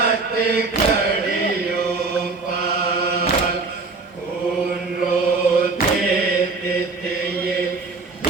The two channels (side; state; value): left; quieter; 4.0 dB